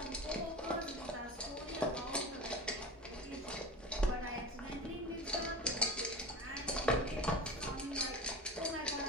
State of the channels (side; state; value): both; normal; correlation 0.31